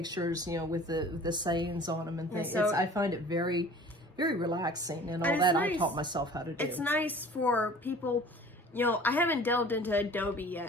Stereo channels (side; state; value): both; normal; correlation 0.46